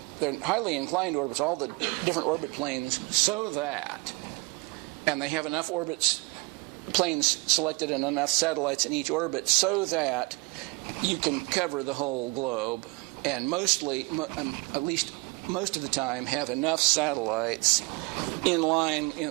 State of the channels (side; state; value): left; quieter; 26.9 dB